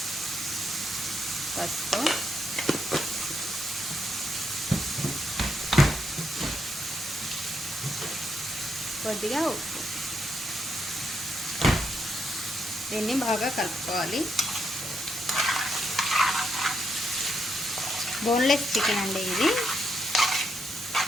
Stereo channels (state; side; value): normal; both; correlation 0.79